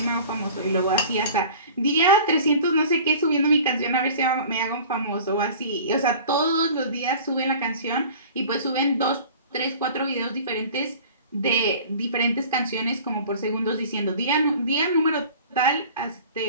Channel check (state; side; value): inverted; both; correlation -0.43